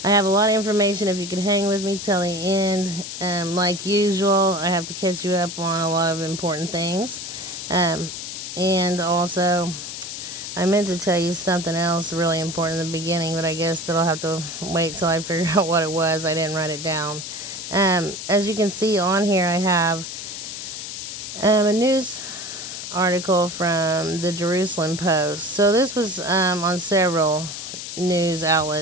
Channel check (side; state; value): left; noise; hiss, 8 dB below the sound